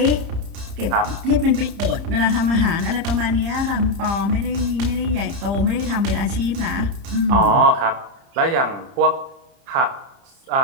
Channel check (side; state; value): left; late; 30 ms